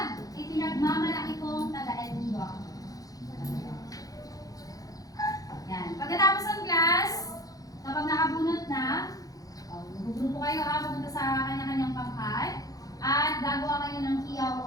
ipinagmamalaki kong taga-Antigo ako. Yan. Pagkatapos ng class, kapag nakabunot na, magugrupo kayo pupunta sa kanya-kanyang pangkat at gagawa kayo ng kiyaw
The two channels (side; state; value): right; late; 0.17 ms